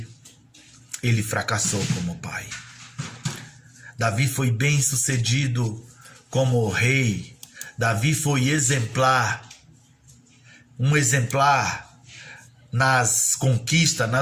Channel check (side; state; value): both; identical; correlation 1.00